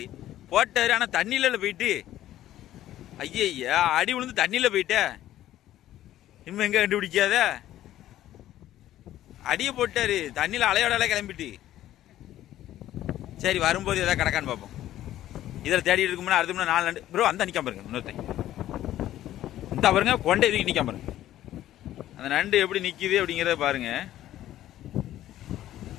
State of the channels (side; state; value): right; quieter; 13.3 dB